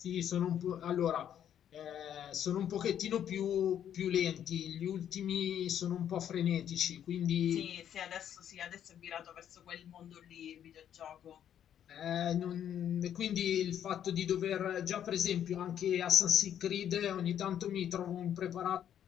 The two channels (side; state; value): right; quieter; 9.9 dB